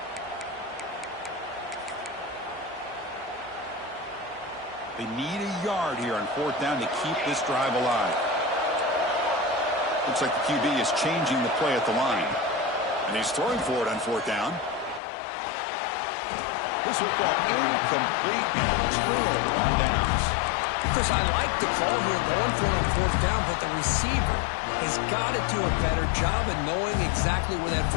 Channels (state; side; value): drops out; right; at 15.0 s